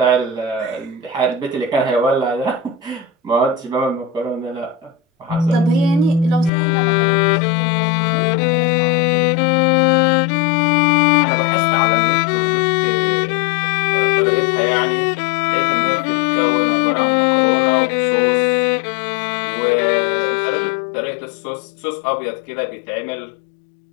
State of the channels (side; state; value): right; drops out; at 6.5 s